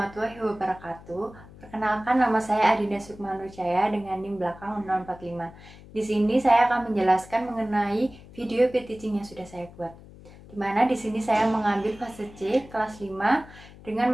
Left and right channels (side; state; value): left; noise; hum, 20 dB below the sound